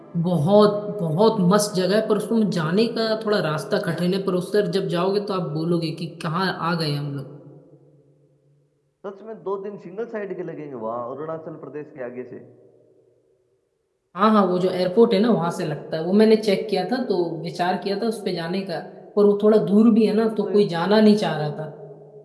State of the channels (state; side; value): identical; both; correlation 1.00